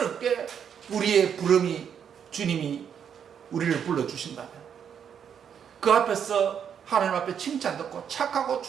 우리의 부름이 주님이 우리를 불러주신다면 그 앞에서 하나님 앞에 칭찬 듣고 착하고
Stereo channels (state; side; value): quieter; left; 8.0 dB